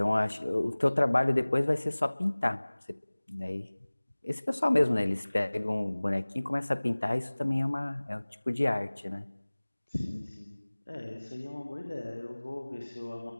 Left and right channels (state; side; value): inverted; both; correlation -1.00